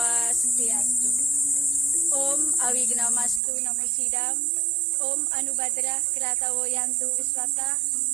Om Awignamastu Namo Sidam. Om Anubhadra Kratawo Yantu Viswata.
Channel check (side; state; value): left; drops out; at 3.4 s